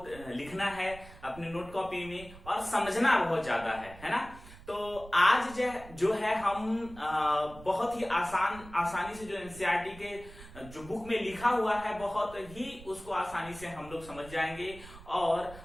लिखना है अपने नोट कॉपी में, और समझना बहुत ज्यादा है ना। तो आज जो है हम बहुत ही आसानी से जो एनसीईआरटी के जो बुक में लिखा हुआ है बहुत ही उसको आसानी से हम लोग समझ जाएंगे। और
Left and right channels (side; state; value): right; noise; rumble, 17 dB below the sound